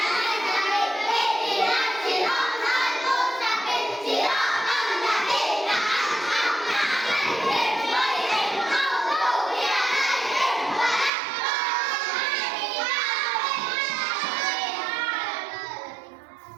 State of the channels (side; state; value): left; drops out; at 11.1 s